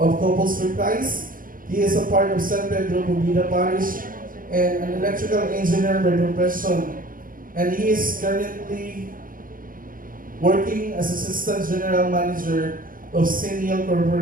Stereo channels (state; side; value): late; left; 0.40 ms